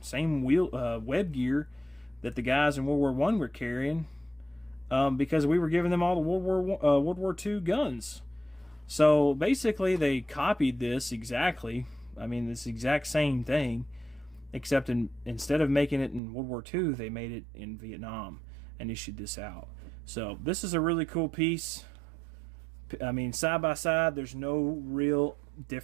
same web gear that the guys in World War I were carrying, because we were giving them all the World War II guns. So basically, they copied this exactly. I mean, this exact same thing, except instead of making it in World War II, they made it in Vietnam and issued this out. So this is a really cool piece. I mean, side by side, there's no real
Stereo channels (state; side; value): drops out; left; at 16.2 s